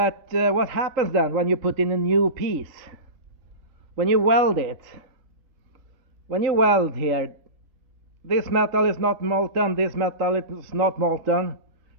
what happens then when you put in a new piece? When you weld it, when you weld here, this metal is not molten, this metal is not molten,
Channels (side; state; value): left; late; 3.9 ms